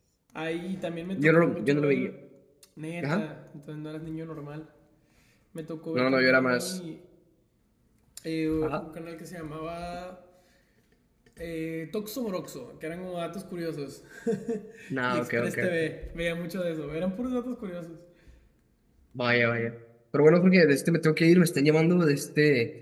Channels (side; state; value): both; identical; correlation 1.00